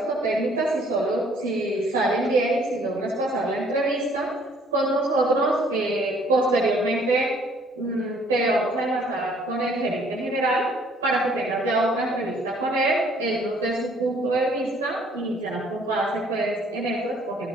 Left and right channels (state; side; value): normal; both; correlation 0.60